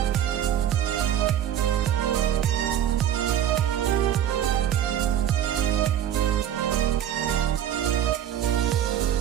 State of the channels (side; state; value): left; quieter; 10.5 dB